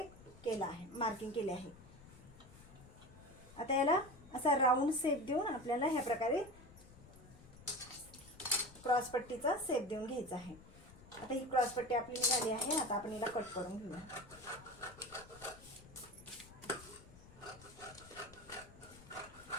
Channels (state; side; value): noise; left; rumble, 20 dB below the sound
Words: केलं आहे, मार्किंग केले आहे. आता याला असा राऊंड शेप देऊन आपल्याला ह्या प्रकारे क्रॉस पट्टीचा शेप देऊन घ्यायचा आहे. आता ही क्रॉस पट्टी आपली निघाली आहे. आता आपण याला कट करून घेऊया.